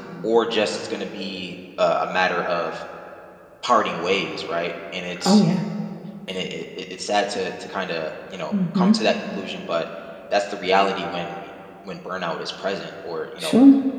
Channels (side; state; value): both; identical; correlation 1.00